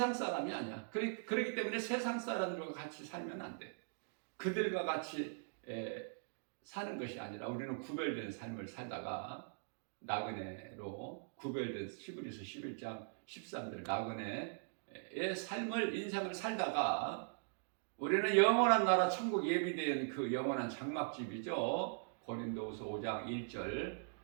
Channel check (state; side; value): silent; left; digital silence